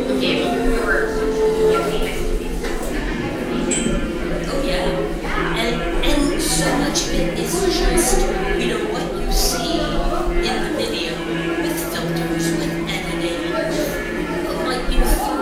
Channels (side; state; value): both; identical; correlation 1.00